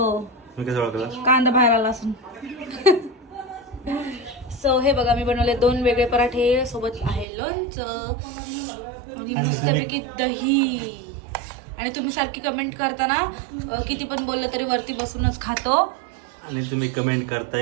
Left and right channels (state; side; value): drops out; left; at 7.2 s